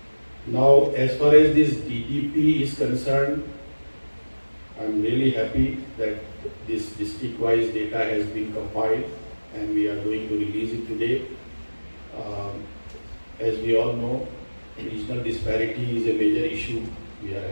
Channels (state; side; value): inverted; both; correlation -1.00